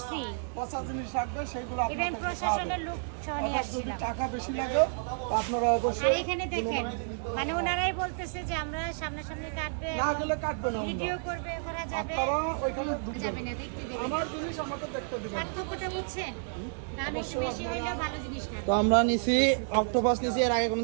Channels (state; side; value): silent; left; digital silence